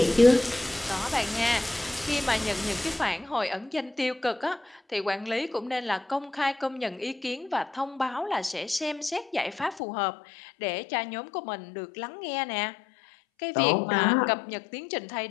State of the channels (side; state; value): right; drops out; at 9.8 s